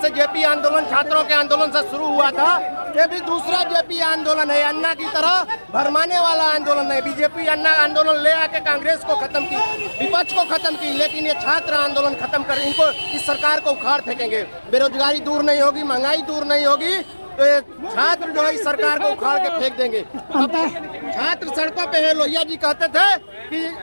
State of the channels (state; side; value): inverted; both; correlation -1.00